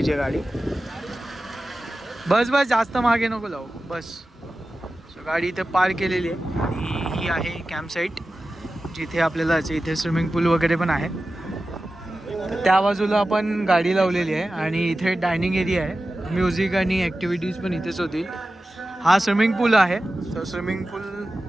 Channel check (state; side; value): normal; both; correlation 0.94